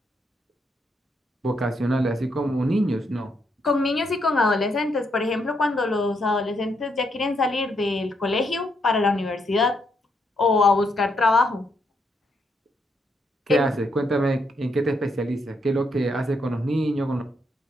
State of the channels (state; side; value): normal; both; correlation 0.77